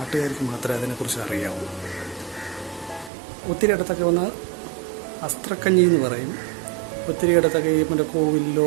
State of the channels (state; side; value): drops out; left; at 3.1 s